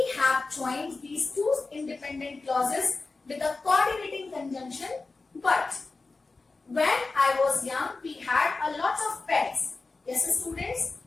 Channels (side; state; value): right; quieter; 3.7 dB